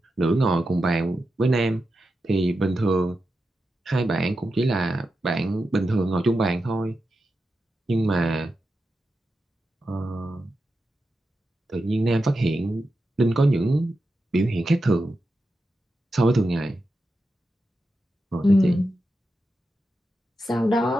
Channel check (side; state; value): both; normal; correlation 0.89